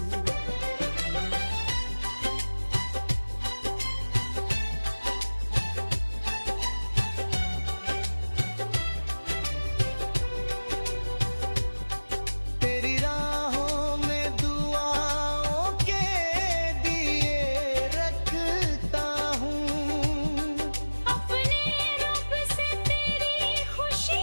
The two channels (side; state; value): both; inverted; correlation -1.00